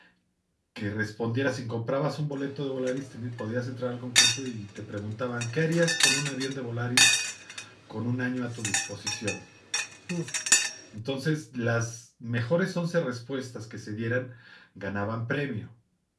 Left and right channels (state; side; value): identical; both; correlation 1.00